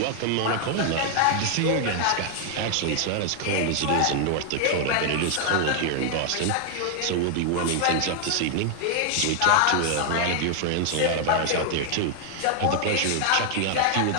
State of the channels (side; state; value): both; different; correlation 0.00